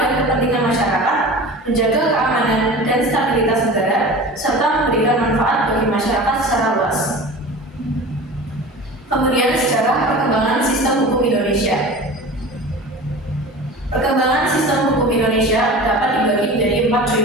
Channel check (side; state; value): both; normal; correlation 0.36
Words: kepentingan masyarakat, menjaga keamanan dan stabilitas negara, serta memberikan manfaat bagi masyarakat secara luas. Kemudian sejarah perkembangan sistem hukum Indonesia. Perkembangan sistem hukum Indonesia dapat dibagi menjadi 4